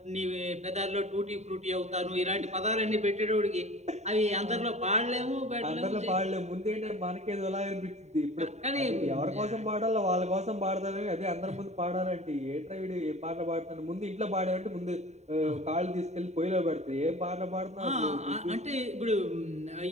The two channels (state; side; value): late; left; 0.32 ms